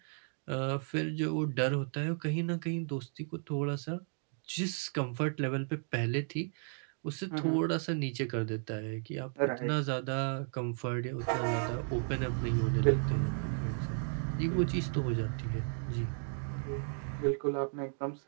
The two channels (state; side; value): silent; left; 55 dB below the other